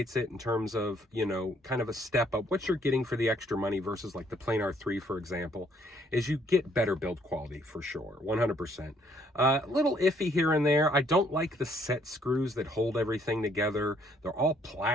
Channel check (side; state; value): both; normal; correlation 0.66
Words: it in terms of, you know, kind of a step up, what you're getting for the extra money versus like the planar 3, for example, is you get better build quality for sure, 100%. A little iffy here and there. I don't like the set screws that hold everything together. They're all